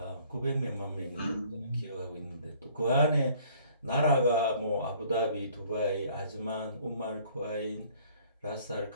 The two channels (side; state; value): both; inverted; correlation -0.57